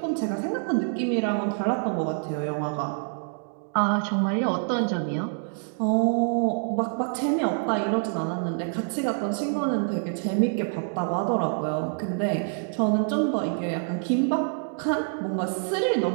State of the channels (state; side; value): silent; left; 61 dB below the other